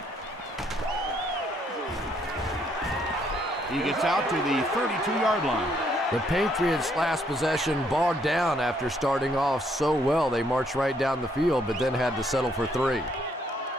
He gets out to the 32-yard line. The Patriots' last possession bogged down after starting off so well. They marched right down the field, but then had to settle for 3.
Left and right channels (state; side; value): normal; both; correlation 0.70